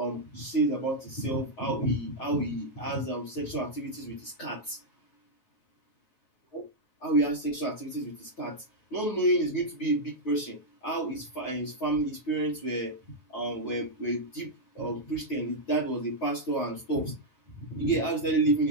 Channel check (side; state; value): right; late; 9.3 ms